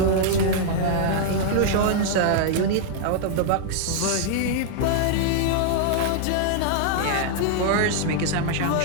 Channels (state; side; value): different; both; correlation -0.01